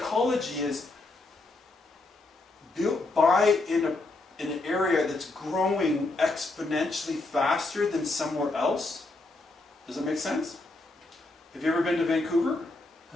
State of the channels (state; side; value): quieter; right; 3.1 dB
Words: is buy in an area that's growing exponentially faster than somewhere else. Does that make sense? Have you ever been to Vancouver?